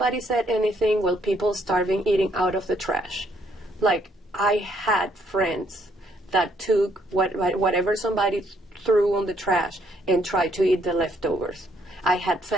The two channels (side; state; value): both; normal; correlation 0.69